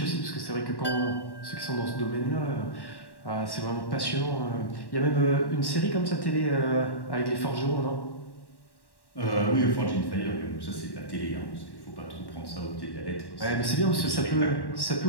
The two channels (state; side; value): late; right; 1.1 ms